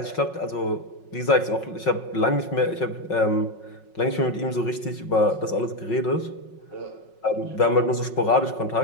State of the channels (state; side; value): late; right; 5.4 ms